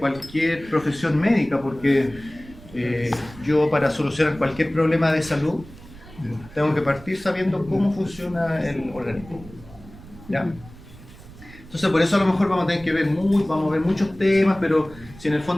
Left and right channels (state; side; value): noise; right; rumble, 19 dB below the sound